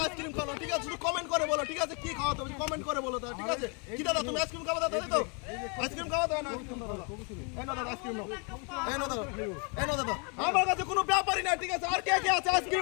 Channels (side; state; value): right; quieter; 35.1 dB